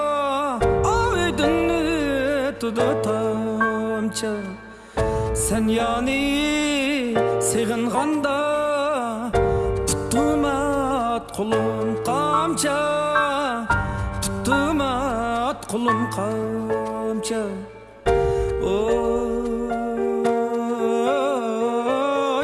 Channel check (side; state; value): both; identical; correlation 1.00